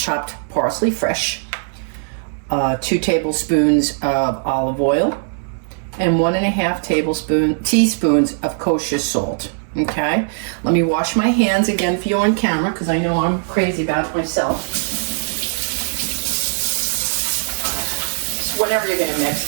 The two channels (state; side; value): silent; left; 66 dB below the other